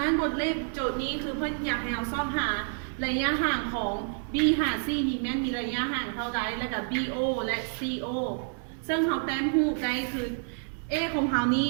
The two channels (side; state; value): left; silent; 59 dB below the other